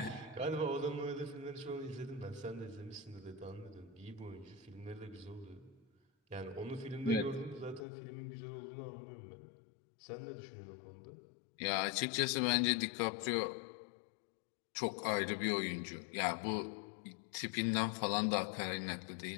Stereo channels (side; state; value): right; drops out; at 7.9 s